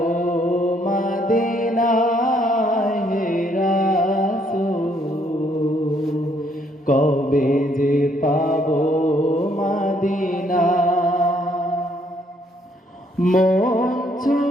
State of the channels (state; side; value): normal; both; correlation 0.68